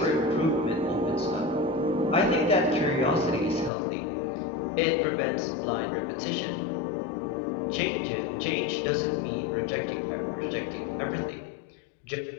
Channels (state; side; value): drops out; right; at 3.7 s